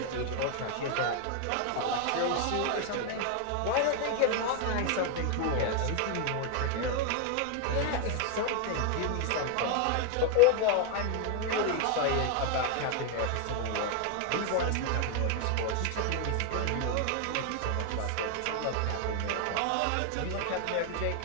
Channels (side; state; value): both; different; correlation 0.01